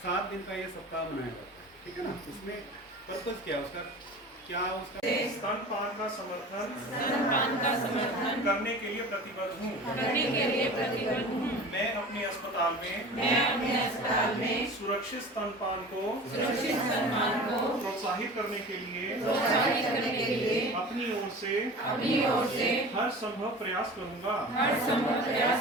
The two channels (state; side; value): normal; both; correlation 0.37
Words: 7 दिन का ये सप्ताह मनाया जाता है, ठीक है ना। इसमें पर्पज क्या है उसका, स्तनपान का समर्थन करने के लिए प्रतिबद्ध हूँ। मैं अपने अस्पताल में सुरक्षित स्तनपान को प्रोत्साहित करने के लिए अपनी ओर से हर संभव प्रयास करूँगा।